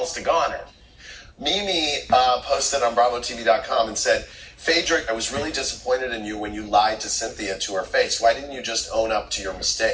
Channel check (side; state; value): both; identical; correlation 1.00